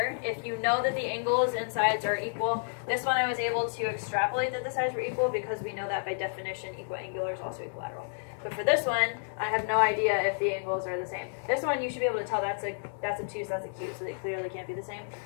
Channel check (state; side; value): silent; right; digital silence